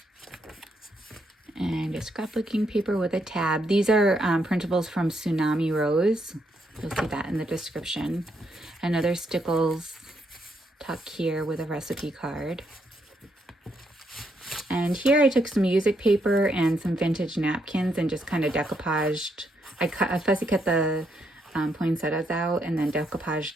And a scrapbooking paper with a tab. These are printables from TsunamiRose. You'll see that in the description. Another stickles tuck here with a recipe card. And here I took some music paper and some vintage napkins and just kind of decoupaged. I fussy cut the poinsettias out and then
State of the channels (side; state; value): both; normal; correlation 0.77